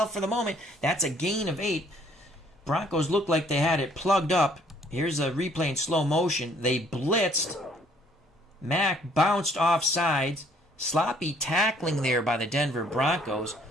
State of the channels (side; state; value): both; normal; correlation 0.62